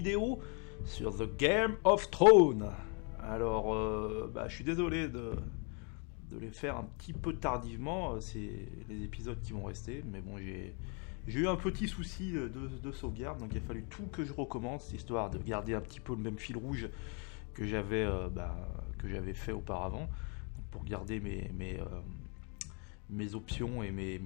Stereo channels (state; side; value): quieter; right; 36.2 dB